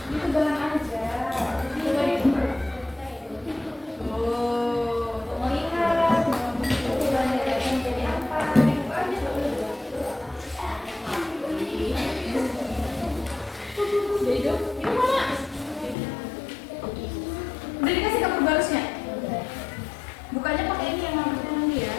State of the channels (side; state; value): right; drops out; at 16.0 s